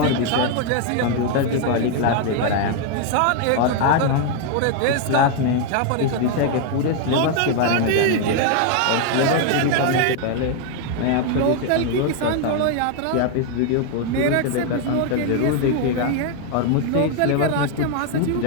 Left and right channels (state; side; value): different; both; correlation 0.00